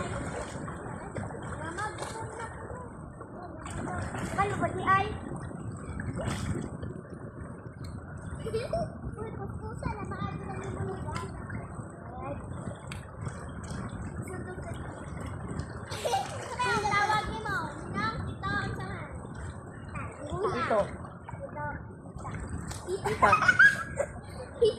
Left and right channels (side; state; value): both; identical; correlation 1.00